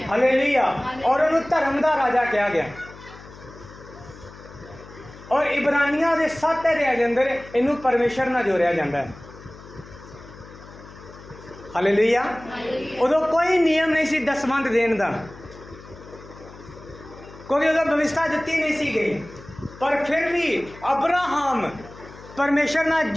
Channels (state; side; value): noise; left; hum, 18 dB below the sound